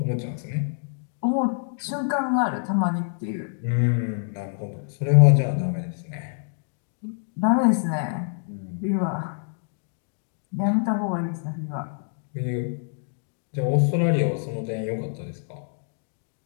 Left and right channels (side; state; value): right; silent; digital silence